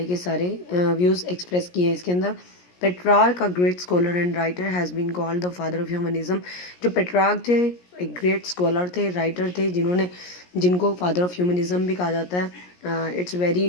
के सारे व्यूज़ एक्सप्रेस किए हैं इसके अंदर. Petrarch, a great scholar and writer, has been called the father of humanism. जो पेट्रार्क थे एक ग्रेट स्कॉलर थे, राइटर थे, जिनको फादर ऑफ ह्यूमनिज्म भी कहा जाता है. It's very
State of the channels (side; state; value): right; late; 17 ms